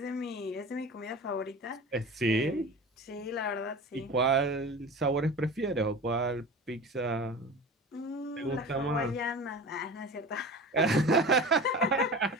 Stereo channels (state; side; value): normal; both; correlation 0.34